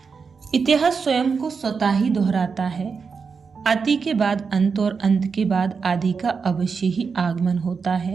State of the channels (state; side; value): quieter; left; 5.4 dB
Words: इतिहास स्वयं को स्वतः ही दोहराता है। अति के बाद अंत और अंत के बाद आदि का अवश्य ही आगमन होता